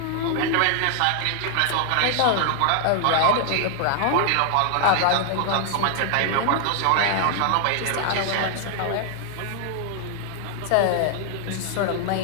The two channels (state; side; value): different; both; correlation 0.00